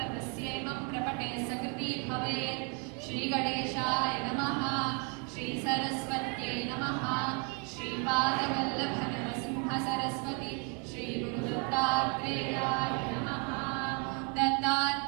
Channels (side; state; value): left; quieter; 35.4 dB